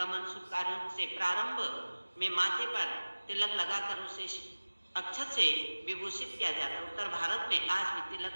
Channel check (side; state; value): both; inverted; correlation -1.00